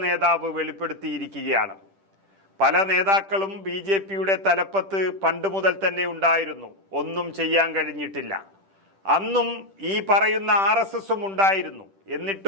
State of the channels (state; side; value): late; left; 10 ms